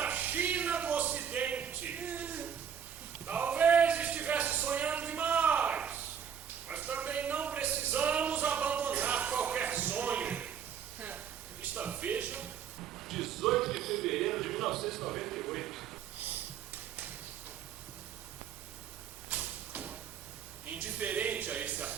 indiferente a esse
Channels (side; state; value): left; quieter; 8.0 dB